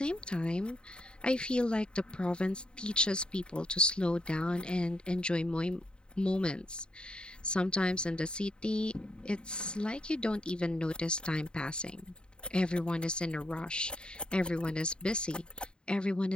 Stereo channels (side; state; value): right; late; 0.050 ms